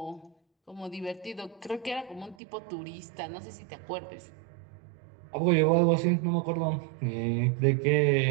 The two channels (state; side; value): drops out; left; at 2.4 s